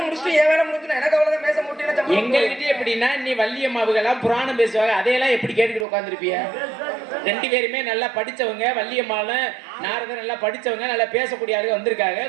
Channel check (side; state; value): left; drops out; at 5.9 s